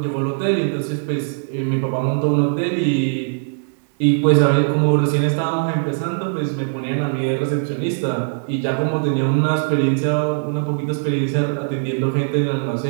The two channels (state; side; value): silent; left; digital silence